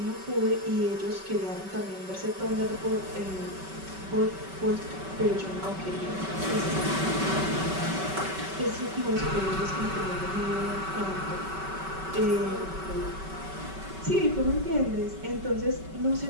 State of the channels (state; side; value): late; left; 5.2 ms